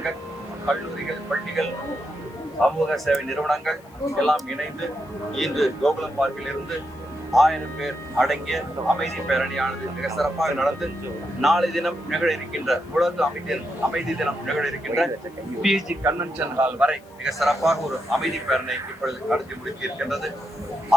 கல்லூரிகள், பள்ளிகள், சமூக சேவை நிறுவனங்கள் எல்லாம் இணைந்து இன்று கோகுலம் பார்க்கில் இருந்து 1000 பேர் அடங்கிய அமைதி பேரணியானது மிக சிறப்பாக நடந்து நாளை தினம் நிகழ இருக்கின்ற உலக அமைதி தினம் நிகழ இருக்கின்ற பிஜி கன்வென்ஷன் ஹால் வரை மிக சிறப்பாக ஒரு அமைதி பேரணி இப்பொழுது நடத்தி முடிக்க இருக்கின்றது.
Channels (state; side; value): noise; left; hiss, 29 dB below the sound